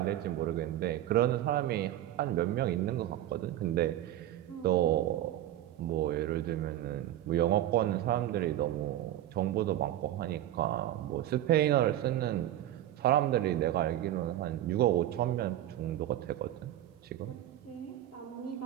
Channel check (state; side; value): quieter; left; 13.0 dB